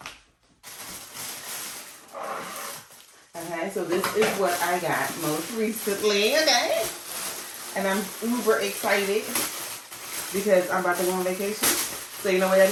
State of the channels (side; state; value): both; identical; correlation 1.00